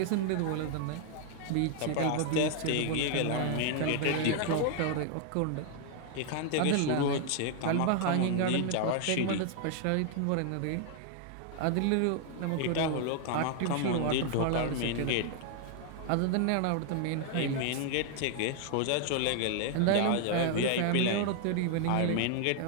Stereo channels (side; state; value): both; different; correlation 0.00